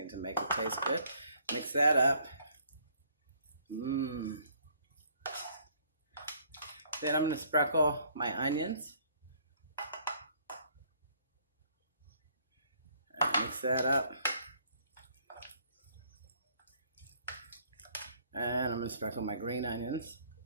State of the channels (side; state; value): both; inverted; correlation -0.63